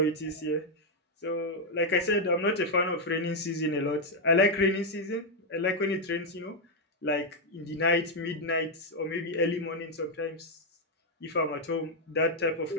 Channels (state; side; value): normal; both; correlation 0.00